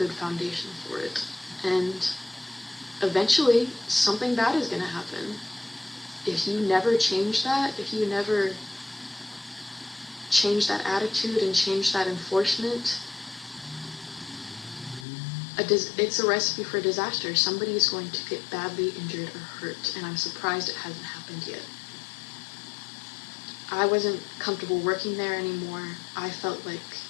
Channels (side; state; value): right; drops out; at 15.1 s